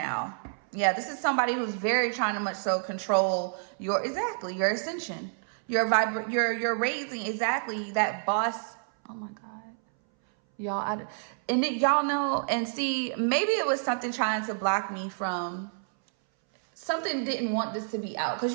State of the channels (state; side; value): silent; left; 59 dB below the other